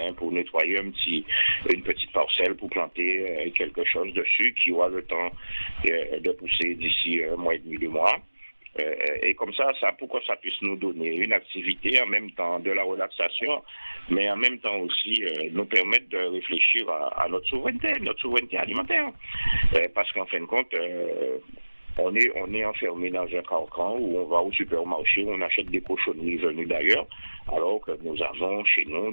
pour nettoyer une petite parcelle, pour planter quelque chose dessus qui aura le temps de pousser d'ici un mois et demi, 2 mois. Et comme ça, pour que ça puisse nous donner une activité, en même temps de la relaxation, mais en même temps aussi nous permettre de réfléchir à notre souveraineté alimentaire. Parce qu'en fin de compte, on est enfermé dans un carcan où on va au supermarché, où on achète des cochonneries venues d'ailleurs, alors que nous avons chez nous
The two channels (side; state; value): both; inverted; correlation -1.00